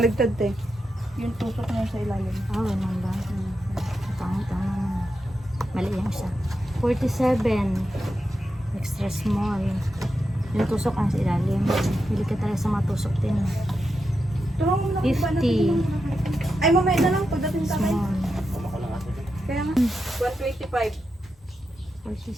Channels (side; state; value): both; normal; correlation 0.88